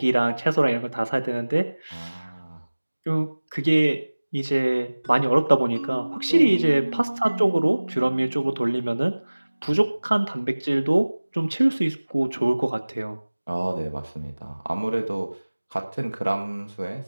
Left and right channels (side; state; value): both; inverted; correlation -1.00